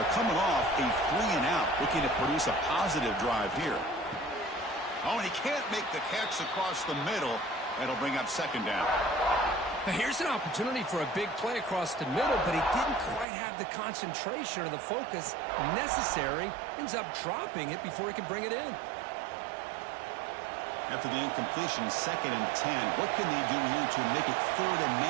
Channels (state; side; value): drops out; left; at 13.2 s